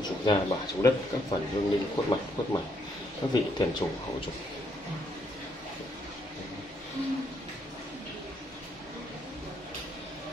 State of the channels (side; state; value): both; normal; correlation 0.73